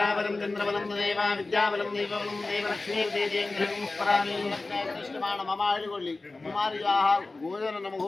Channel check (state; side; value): quieter; right; 3.3 dB